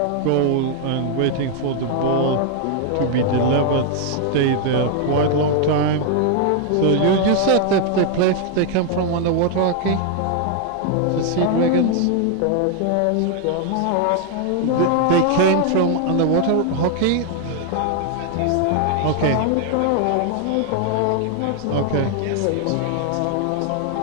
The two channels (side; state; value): both; different; correlation 0.00